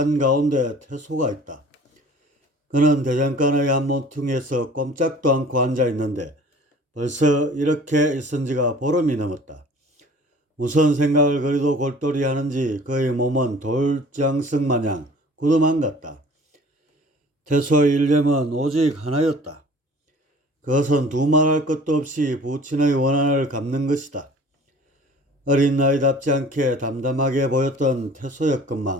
태소가 있다. 그는 대장간의 한 모퉁이에서 꼼짝도 않고 앉아 있는데 벌써 이렇게 있은 지가 보름이 넘었다. 무슨 생각을 그리도 골똘히 하는지 그의 몸은 돌장석 마냥 굳어만 같다. 태소의 일념은 오직 하나였다. 그것은 두말할 것도 없이 부친의 원한을 갚는 것이다. 어린 나이답지 않게 담담하게 보였던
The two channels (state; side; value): normal; both; correlation 0.47